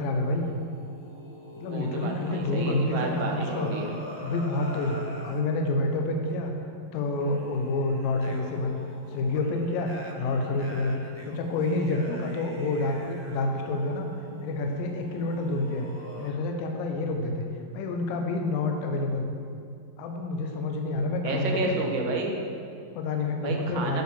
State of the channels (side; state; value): right; late; 11 ms